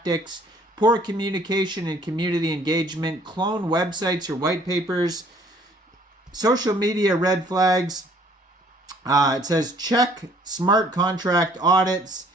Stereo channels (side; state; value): both; normal; correlation 0.59